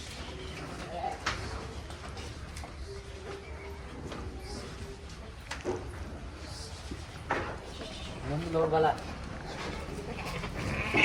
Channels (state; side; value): identical; both; correlation 1.00